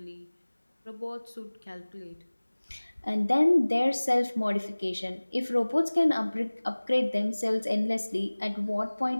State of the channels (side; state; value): both; inverted; correlation -1.00